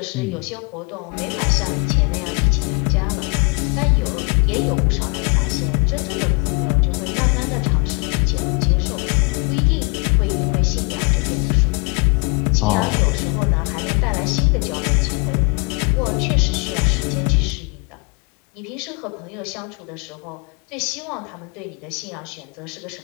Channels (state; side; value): quieter; right; 31.6 dB